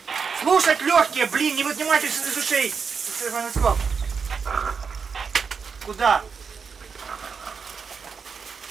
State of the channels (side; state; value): left; quieter; 5.8 dB